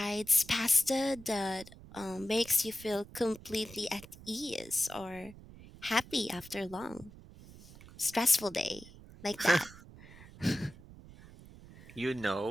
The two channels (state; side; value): noise; right; rumble, 18 dB below the sound